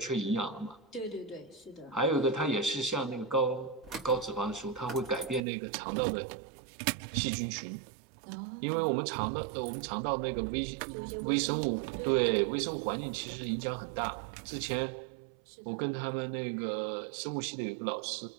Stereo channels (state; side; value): drops out; left; at 5.4 s